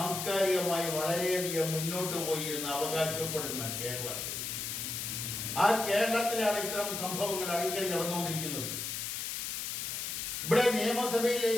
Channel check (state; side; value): noise; left; hiss, 4 dB below the sound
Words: വളരെയധികം മുന്നോട്ട് പോയി എന്ന് അവകാശപ്പെടുന്ന കേരളത്തിൽ, ആ കേരളത്തിലാണ് ഇത്തരം സംഭവങ്ങൾ അടിക്കടി നടന്നുകൊണ്ടിരിക്കുന്നത്. ഇവിടെ